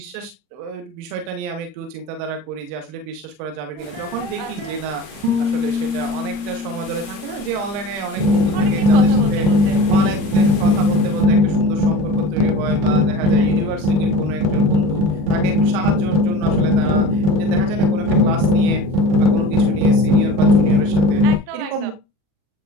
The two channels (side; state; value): left; late; 40 ms